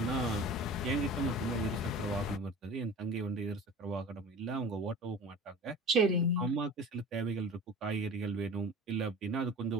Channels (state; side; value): normal; both; correlation 0.38